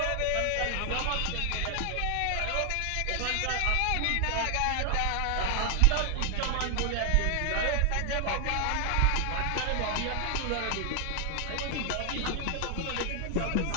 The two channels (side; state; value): both; different; correlation 0.00